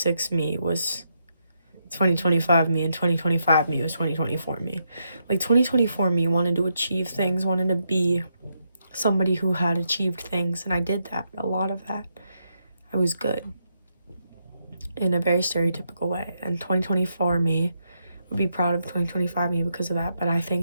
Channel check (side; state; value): both; inverted; correlation -0.81